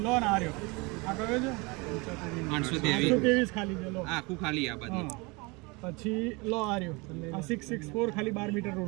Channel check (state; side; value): quieter; left; 26.8 dB